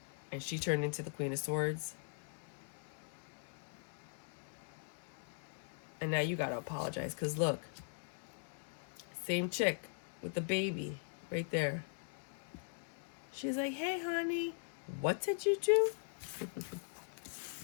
and she turned into the Queen of Swords. And now you gotta apologize, because look, same chick with the baby right there. She's like, hey, honey, what did you do?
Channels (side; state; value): right; silent; digital silence